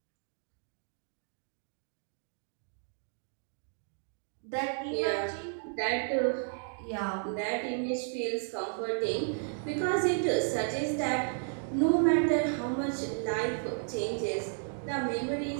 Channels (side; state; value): left; silent; digital silence